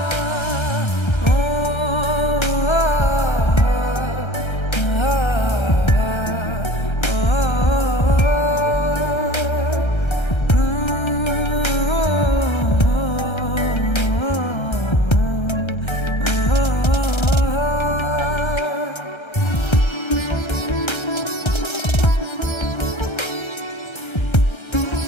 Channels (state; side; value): late; right; 1.3 ms